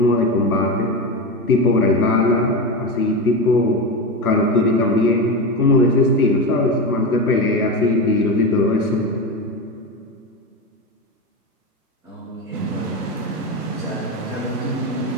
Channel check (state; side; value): normal; both; correlation 0.19